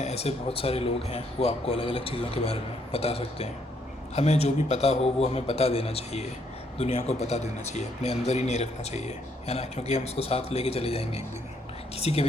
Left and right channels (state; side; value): normal; both; correlation 0.71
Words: ऐसे बहुत सारे लोग हैं वो आपको अलग अलग चीज़ों के बारे में बता सकते हैं। हमें जो भी पता हो वो हमें बता देना चाहिए, दुनिया को बता देना चाहिए, अपने अंदर ही नहीं रखना चाहिए, है ना। क्योंकि हम उसको साथ लेके चले जाएंगे एक दिन, किसी के